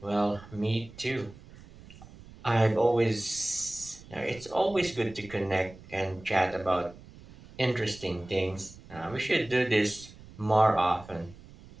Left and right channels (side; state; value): right; noise; rumble, 20 dB below the sound